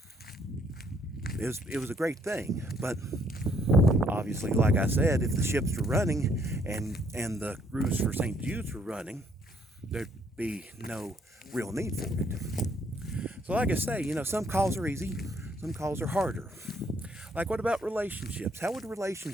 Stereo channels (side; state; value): both; normal; correlation 0.67